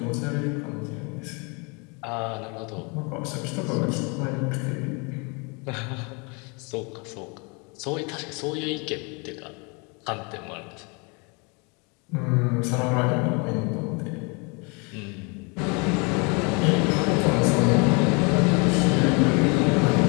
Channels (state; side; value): quieter; right; 31.8 dB